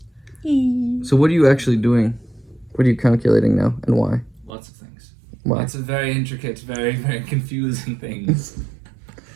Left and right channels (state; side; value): drops out; left; at 4.5 s